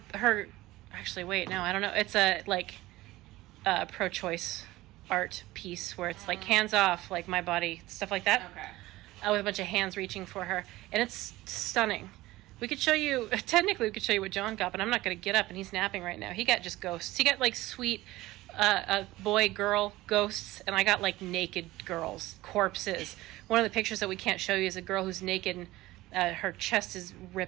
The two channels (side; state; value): left; quieter; 17.9 dB